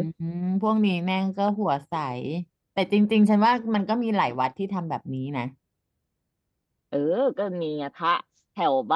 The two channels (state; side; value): identical; both; correlation 1.00